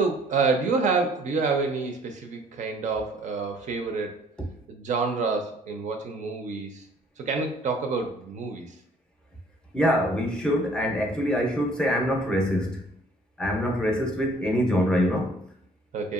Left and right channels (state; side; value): normal; both; correlation 0.58